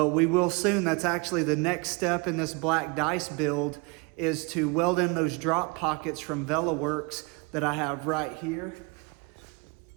we will soon. That's actually the next step in this black dice build, is to weld in those drop pockets from VelaWorks that I have right here.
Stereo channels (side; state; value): left; quieter; 29.3 dB